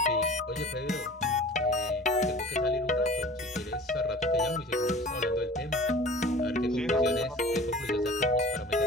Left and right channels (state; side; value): normal; both; correlation 0.43